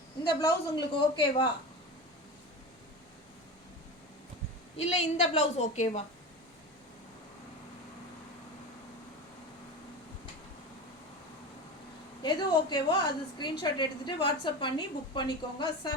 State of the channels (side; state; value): both; normal; correlation 0.27